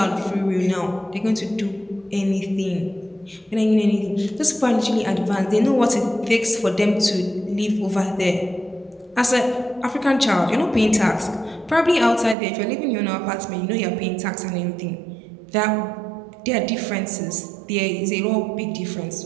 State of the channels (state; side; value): drops out; left; at 12.4 s